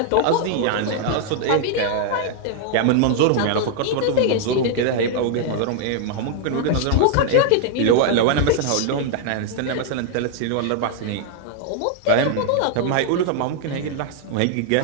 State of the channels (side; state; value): both; different; correlation 0.00